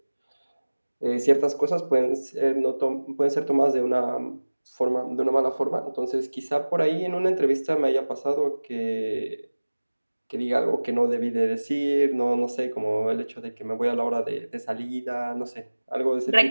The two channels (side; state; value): both; inverted; correlation -1.00